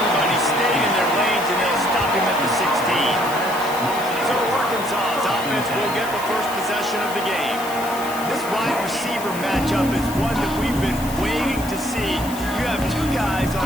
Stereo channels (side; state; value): left; noise; hiss, 13 dB below the sound